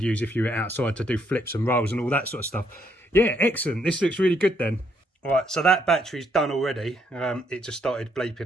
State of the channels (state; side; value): normal; both; correlation 0.72